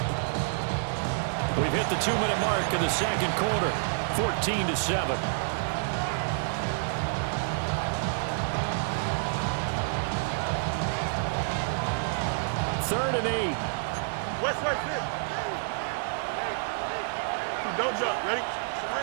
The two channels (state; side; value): silent; left; digital silence